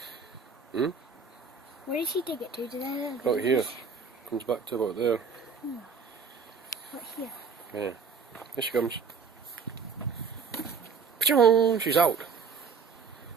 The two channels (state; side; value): quieter; left; 5.3 dB